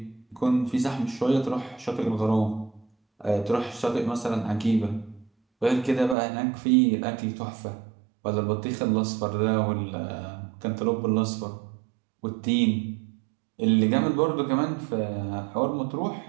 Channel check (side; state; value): left; drops out; at 6.2 s